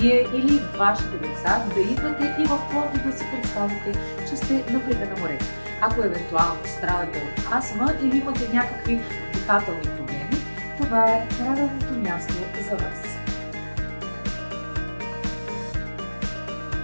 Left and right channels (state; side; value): inverted; both; correlation -1.00